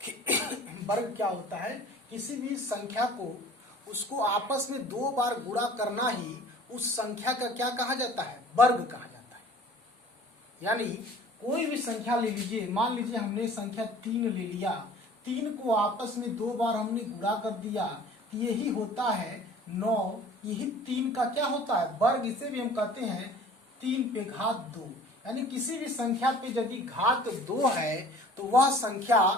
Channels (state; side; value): normal; both; correlation 0.47